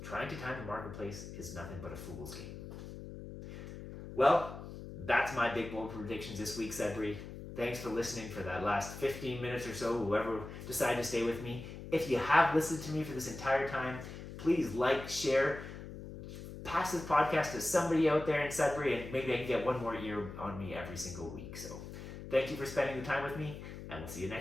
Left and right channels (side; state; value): left; noise; hum, 11 dB below the sound